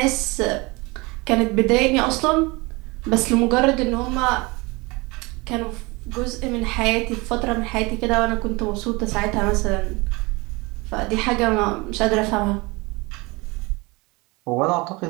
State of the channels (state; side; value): quieter; left; 25.2 dB